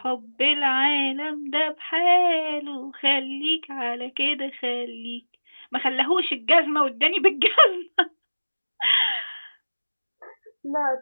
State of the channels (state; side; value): inverted; both; correlation -1.00